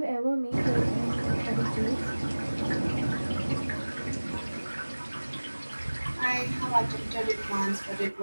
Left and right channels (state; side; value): inverted; both; correlation -1.00